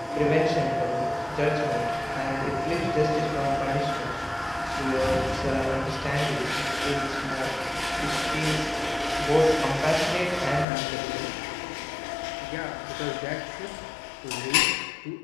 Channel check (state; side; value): drops out; right; at 10.7 s